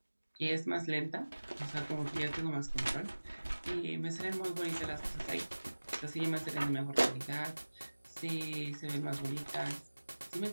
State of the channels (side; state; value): both; inverted; correlation -1.00